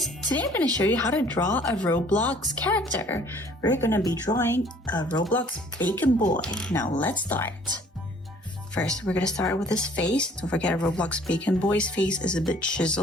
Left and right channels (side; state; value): both; normal; correlation 0.56